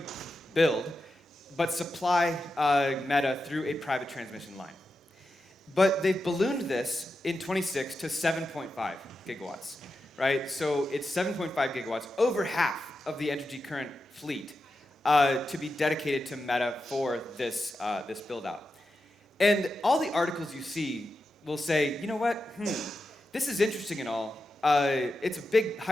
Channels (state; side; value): normal; both; correlation 0.89